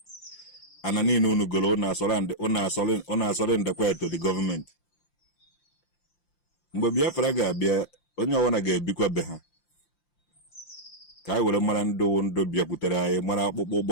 And I need to go on to the government. Mgbe Biafra ga-abịa onye ọwụna ga-ebikwa be ha ka anyị were mara ndụ bịakwutere anyị mara akpụkpọ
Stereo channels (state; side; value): late; right; 5.8 ms